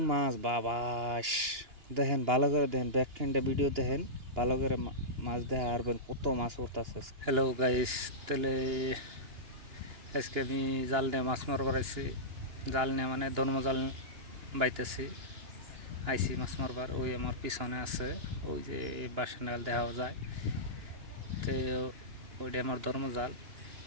মাছ বাবাস দেখেন ভালো করে দেখেন ব্যাকখানটা ভিডিও দেখেন ভালো করে মাছ দেখা আরবেন কত মাছ উঠতাছে। হ্যালো গাইস, তাহলে আজকে আমি জাল নিয়ে মাছ মারবার আইছি। জাল নিয়ে মানে ধর্ম জাল বাইতেছি আইসি মাছ মারবার। ওই আমার পিছনে আছে ওই যে বাসা নাগাল দেখা যায় তো ওইটা আমার ধর্ম জাল।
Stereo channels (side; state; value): left; late; 2.9 ms